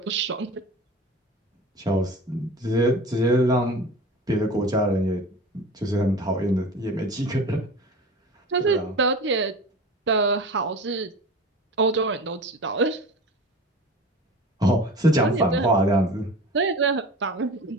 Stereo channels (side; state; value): both; normal; correlation 0.36